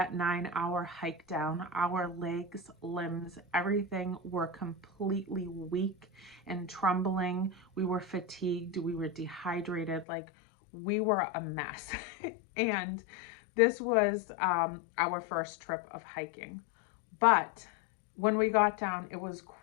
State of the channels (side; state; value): right; drops out; at 10.1 s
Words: 9-hour hike down, our legs, limbs, everything were completely weak and trembling. We were fatigued. We were dehydrated. Like, we were a mess. And this was our first trip of hiking. But when we got down, it was